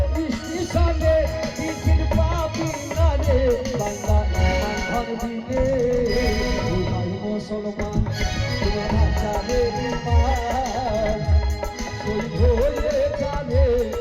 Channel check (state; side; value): identical; both; correlation 1.00